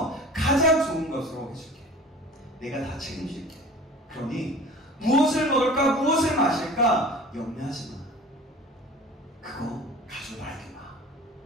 가장 좋은 것으로 해줄게. 내가 다 책임질게. 그러니 무엇을 먹을까? 무엇을 마실까? 염려하지 마. 그거 가지고 나에게 마.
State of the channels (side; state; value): both; normal; correlation 0.41